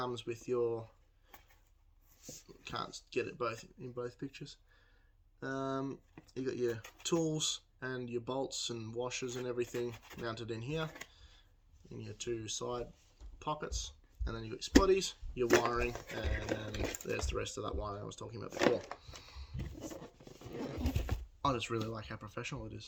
with your, can't get it both in both pictures. You got your tools and your bolts and washers and everything mounted in here in your 2 side pockets, and then you got your spotties, your wiring, and there's the rest of that wiring I was talking about before. I just really like how professional it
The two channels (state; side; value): identical; both; correlation 1.00